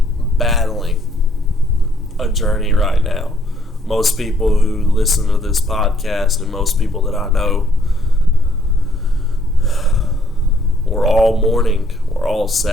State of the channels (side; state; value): both; normal; correlation 0.65